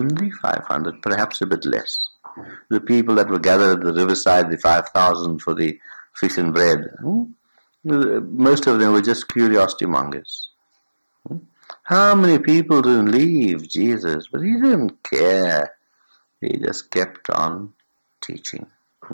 500, perhaps a bit less. The people that were gathered at the riverside, the 5,000 for the fish and bread, most of them were just curiosity mongers. How many people didn't leave Jesus? But he didn't care. He just kept on teaching.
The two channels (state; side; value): inverted; both; correlation -1.00